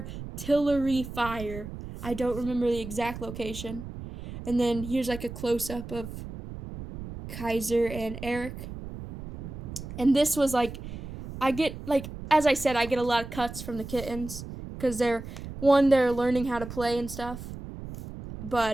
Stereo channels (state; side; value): noise; right; rumble, 10 dB below the sound